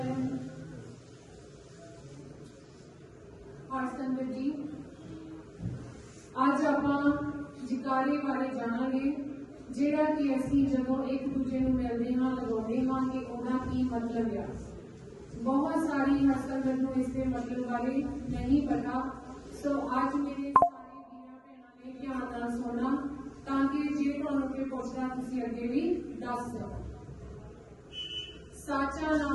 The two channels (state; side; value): identical; both; correlation 1.00